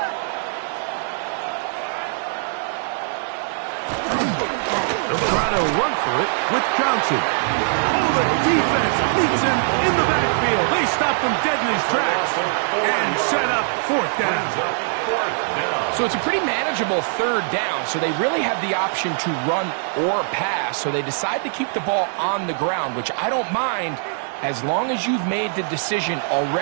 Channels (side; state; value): left; silent; 64 dB below the other